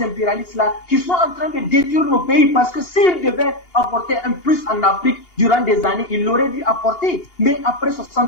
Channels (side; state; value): right; late; 2.8 ms